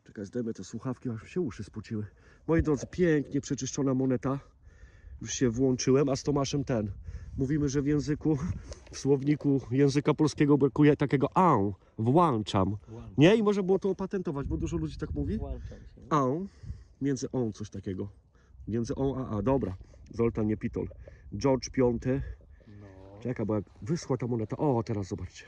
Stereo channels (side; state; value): both; identical; correlation 1.00